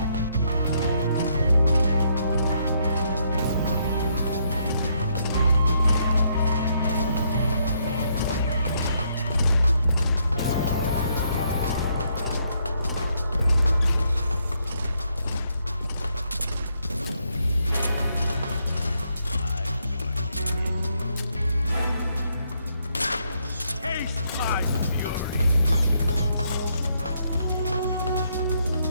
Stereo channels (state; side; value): inverted; both; correlation -0.74